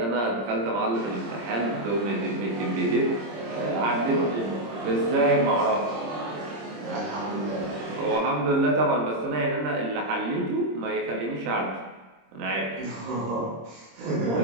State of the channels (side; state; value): left; late; 26 ms